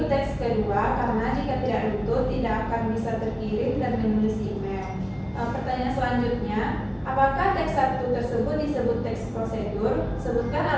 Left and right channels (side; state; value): both; identical; correlation 1.00